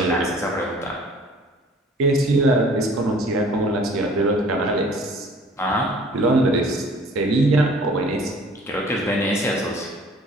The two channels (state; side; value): normal; both; correlation 0.52